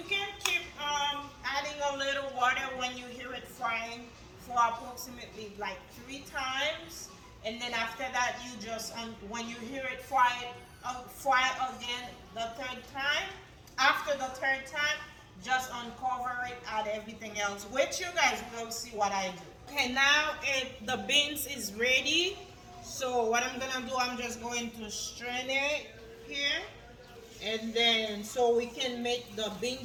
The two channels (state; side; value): identical; both; correlation 1.00